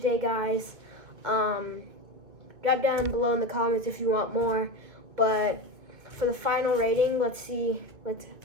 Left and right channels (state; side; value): late; left; 2.4 ms